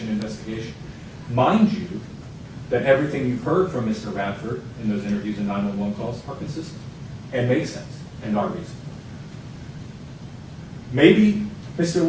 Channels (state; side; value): identical; both; correlation 1.00